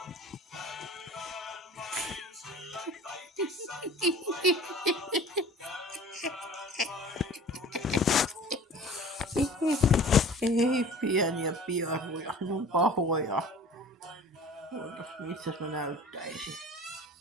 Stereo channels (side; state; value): both; normal; correlation 0.43